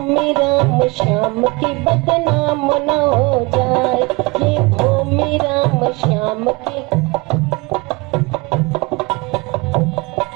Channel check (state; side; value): quieter; left; 26.4 dB